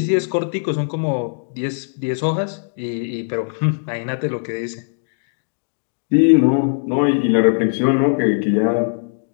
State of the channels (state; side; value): silent; right; digital silence